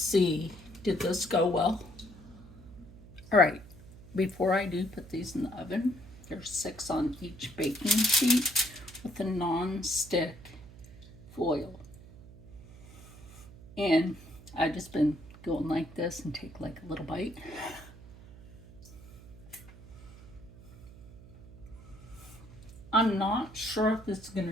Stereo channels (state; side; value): noise; right; hum, 18 dB below the sound